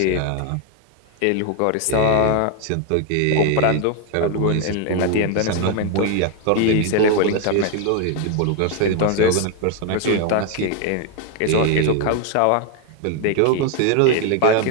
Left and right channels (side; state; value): both; different; correlation 0.01